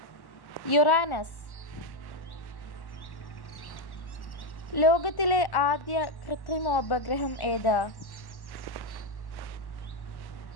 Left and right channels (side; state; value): right; late; 1.1 ms